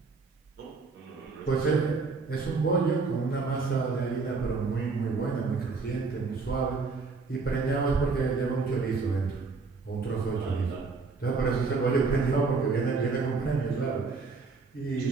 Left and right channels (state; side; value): quieter; left; 4.3 dB